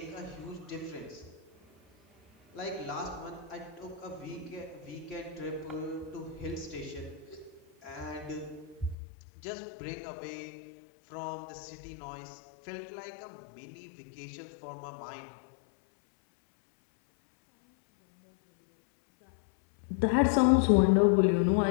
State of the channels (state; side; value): drops out; right; at 9.0 s